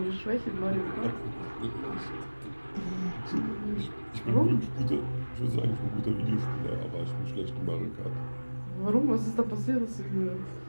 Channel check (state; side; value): inverted; both; correlation -1.00